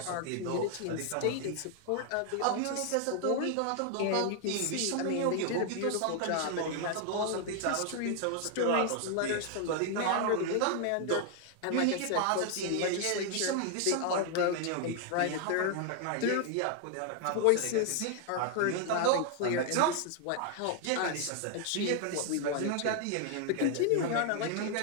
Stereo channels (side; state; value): both; different; correlation 0.00